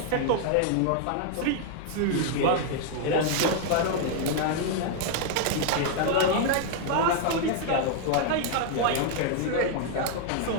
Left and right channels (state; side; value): different; both; correlation 0.00